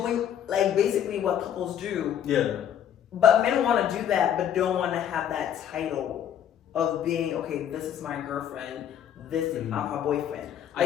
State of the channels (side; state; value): right; quieter; 9.7 dB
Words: like basically what couples do. Yeah. But men want to do that, but don't want to have that title of being okay. This is my girlfriend. This is my boyfriend.